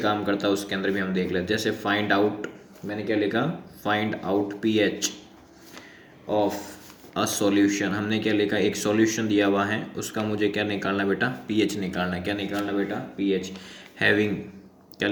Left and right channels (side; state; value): both; identical; correlation 1.00